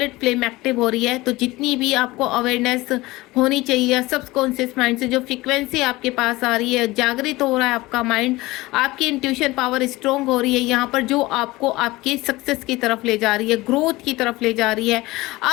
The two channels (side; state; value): right; quieter; 20.1 dB